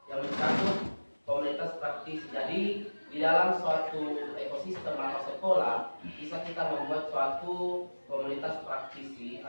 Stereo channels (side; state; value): both; inverted; correlation -1.00